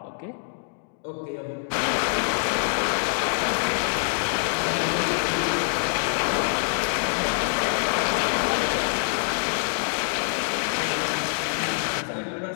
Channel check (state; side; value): silent; right; digital silence